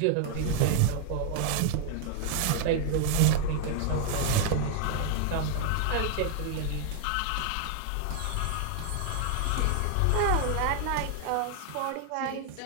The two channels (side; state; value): both; different; correlation 0.00